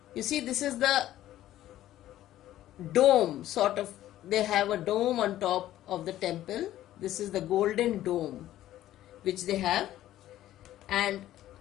You see, this is the dome, sort of, they have a dome on top of the temple. This is the golden dome which they have, and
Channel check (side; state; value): right; quieter; 13.5 dB